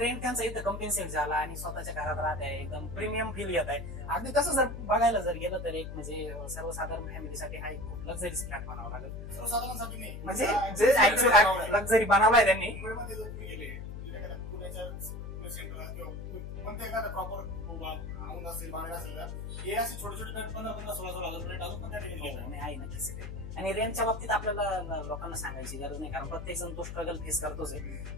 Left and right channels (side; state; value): left; noise; hum, 8 dB below the sound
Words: त्यांचा इथं कम्पेन्सेट झाला आणि स्वतःच्या घरात राहत आहे, एकदम प्रीमियम फील येत आहे. अगदी तसं जर बघायला जर गेलं तर एक म्हणजे सर्वसाधारण फॅमिलीसाठी हा एक खूप लक्झरीज फ्लॅट बनावा लागेल. सर्वसाधारणसाठी नाही, म्हणजे जे ऍक्च्युअल लक्झरी बनवलाय त्यांनी. मुंबईमध्ये जर तुम्ही गेले पुण्याच्या सेंटरला किंवा कोणत्या एखादा प्रॉपर औंध असेल, बाणेर असेल, हे असे छोटे छोटे फ्लॅट 15,000-16,000 फ्लॅट अजून पण त्या ठिकाणी आहे नक्कीच. आणि रेंटच्या बाबतीत आपल्याला लोकांना सांगायची गरज नाही, कारण प्रत्येक जण तो स्ट्रगल फेस करतोच आहे.